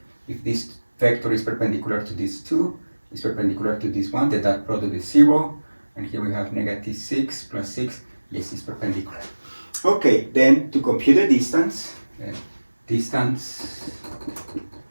if this vector is perpendicular to this 2, is perpendicular to this 1, the dot product is 0, and here we have negative 6 plus 6, yes, it's perpendicular. Okay, then to compute the distance,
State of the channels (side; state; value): both; inverted; correlation -1.00